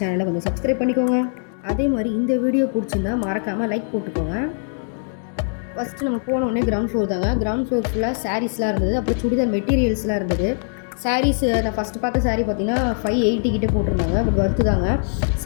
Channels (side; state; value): right; silent; digital silence